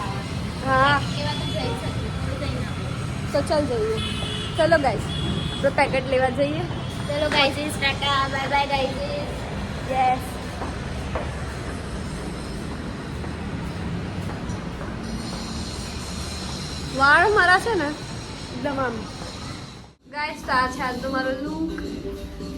હા તો ચાલ જઈએ. ચલો ગાઈસ, તો પેકેટ લેવા જઈએ. ચલો guys, Tata bye bye guys. Yes. વાળ મારા છે ને એકદમ આમ. ગાઈસ, તો આ છે આજ તો મારો લુક.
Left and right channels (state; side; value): identical; both; correlation 1.00